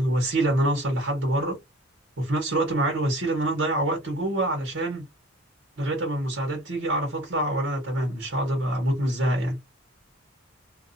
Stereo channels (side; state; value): both; normal; correlation 0.48